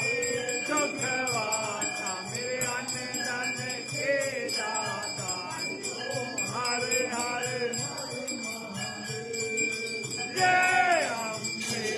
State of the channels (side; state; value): both; identical; correlation 1.00